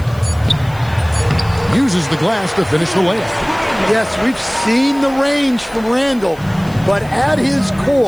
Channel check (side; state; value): left; noise; hiss, 25 dB below the sound